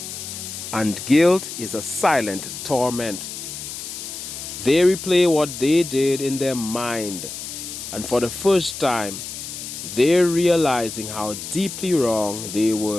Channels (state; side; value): noise; left; hiss, 9 dB below the sound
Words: And guilt is a silent torment. They replay what they did in their mind. And for the first time, they're realizing how deeply wrong they